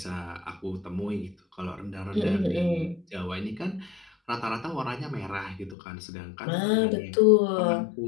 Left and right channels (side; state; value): right; drops out; at 5.8 s